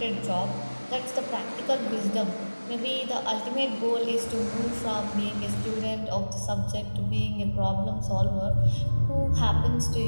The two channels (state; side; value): inverted; both; correlation -1.00